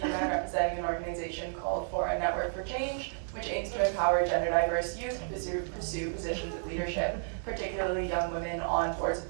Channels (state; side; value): silent; left; 57 dB below the other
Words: the UN representing an organization called Foreign Network for Change, which aims to empower gender diverse youth to pursue positions of leadership, particularly young women on boards of